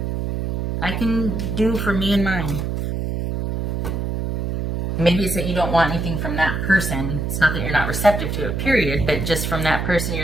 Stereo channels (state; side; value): noise; right; hum, 2 dB below the sound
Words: I can do for me and mine. Maybe it's that you don't want anything from that person. It's not that you're not receptive to it, period, but just from that person,